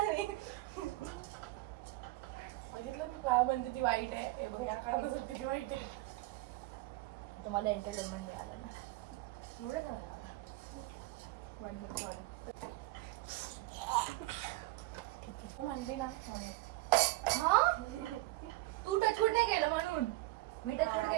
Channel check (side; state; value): left; quieter; 19.4 dB